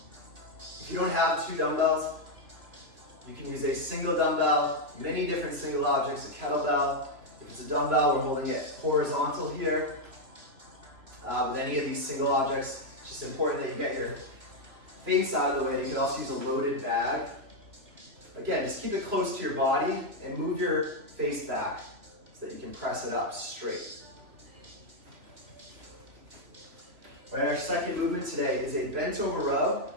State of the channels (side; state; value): left; late; 3.0 ms